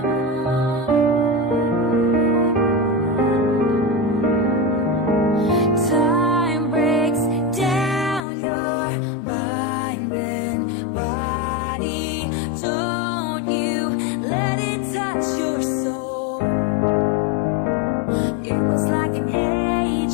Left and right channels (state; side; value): drops out; right; at 8.2 s